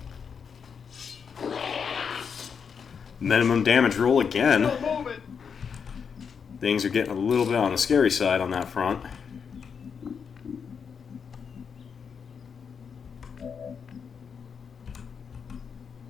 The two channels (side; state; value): right; quieter; 6.5 dB